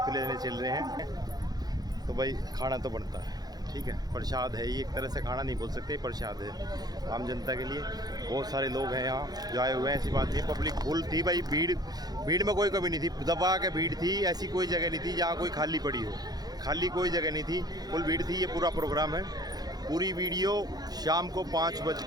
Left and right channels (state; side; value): late; left; 0.19 ms